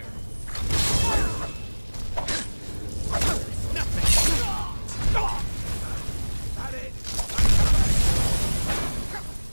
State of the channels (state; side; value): inverted; both; correlation -1.00